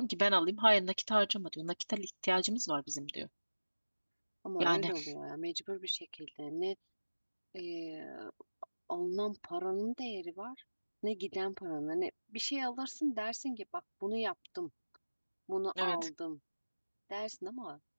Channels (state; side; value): inverted; both; correlation -1.00